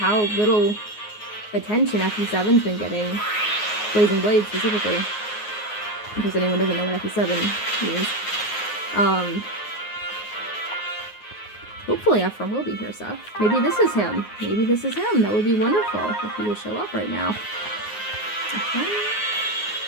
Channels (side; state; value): right; late; 9.5 ms